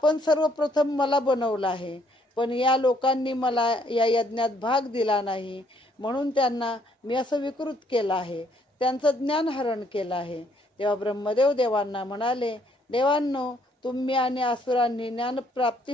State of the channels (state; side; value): normal; both; correlation 0.67